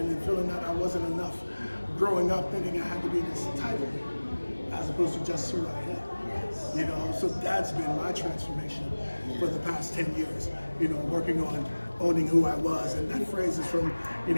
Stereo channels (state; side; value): inverted; both; correlation -1.00